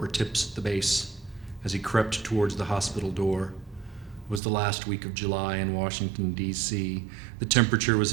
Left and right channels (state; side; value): drops out; left; at 4.4 s